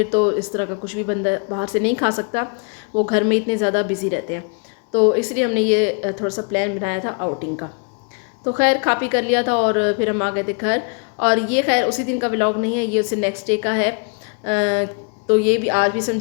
तो इस तरह का कुछ भी बंदा बाहर से नहीं खा सकता, वो घर में इतने ज़्यादा बिज़ी रहते हैं। तो इसलिए हमने ये थोड़ा सा प्लान बनाया था आउटिंग का। तो खैर खा पी कर लिया था और फिर हम आ गए थे घर। और ये खैर उसी दिन का व्लॉग नहीं है, ये उससे नेक्स्ट डे का है। तो ये भी आज भी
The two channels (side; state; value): right; quieter; 36.2 dB